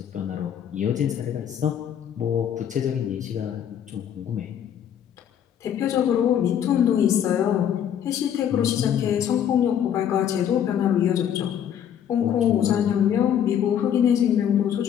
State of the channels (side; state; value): right; quieter; 9.4 dB